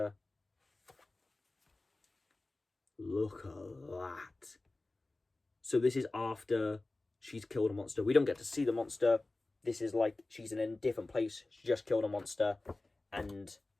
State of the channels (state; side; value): quieter; right; 3.0 dB